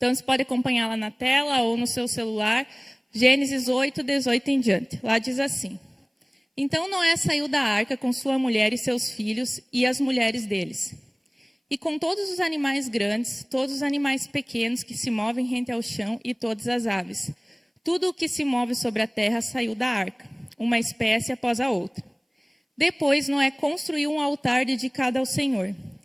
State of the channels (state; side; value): identical; both; correlation 1.00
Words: você pode acompanhar lá na tela ou no seu celular, Gênesis 8, 18 em diante. Lá diz assim: Então Noé saiu da arca com sua mulher e seus filhos e as mulheres deles. E com todos os animais grandes, todos os animais pequenos que se movem rente ao chão e todas as aves. Tudo o que se move sobre a terra saiu da arca, uma espécie após a outra. Depois Noé construiu um altar dedicado ao Senhor.